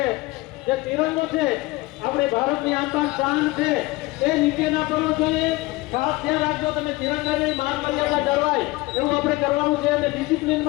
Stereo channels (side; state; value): right; quieter; 21.1 dB